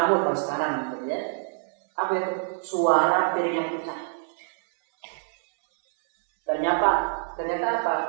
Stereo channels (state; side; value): silent; left; 61 dB below the other